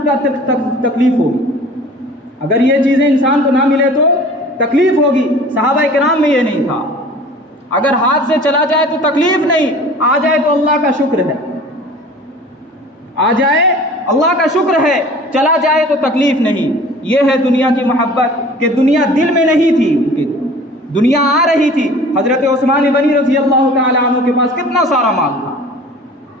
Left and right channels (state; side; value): normal; both; correlation 0.45